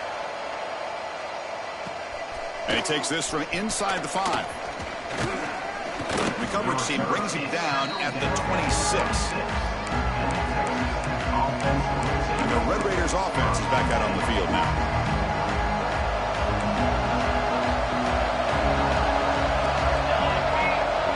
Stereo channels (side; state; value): both; identical; correlation 1.00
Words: And he takes this from inside the 5. The coverage team brings him down at the 26. And the Red Raiders offense is back out on the field now.